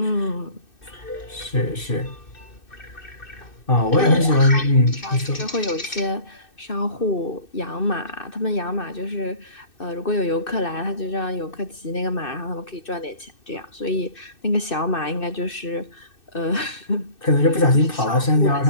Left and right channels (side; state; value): right; late; 2.6 ms